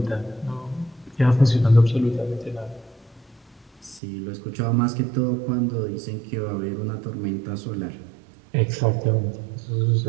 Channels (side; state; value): left; drops out; at 4.0 s